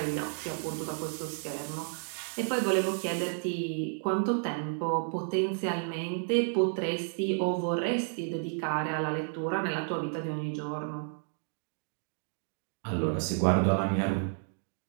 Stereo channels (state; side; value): silent; left; 57 dB below the other